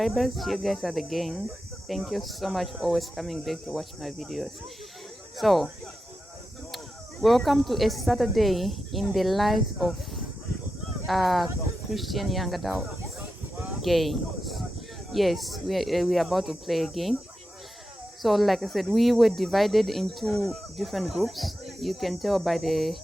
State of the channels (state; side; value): normal; both; correlation 0.90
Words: you guys are the gang. Thank you so much for always coming back to watch my videos. So welcome to a Saturday in the life of Christian young adult games. Yes, we are about to play a game. So like I said, we were divided into different groups. You can tell by the